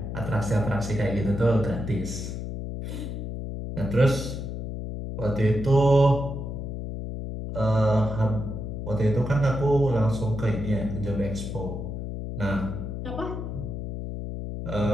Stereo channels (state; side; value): noise; left; hum, 6 dB below the sound